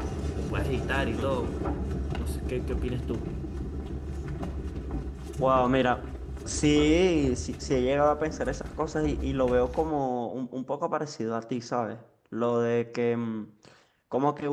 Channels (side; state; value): both; identical; correlation 1.00